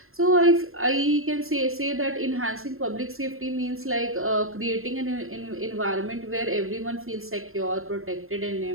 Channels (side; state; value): left; late; 0.61 ms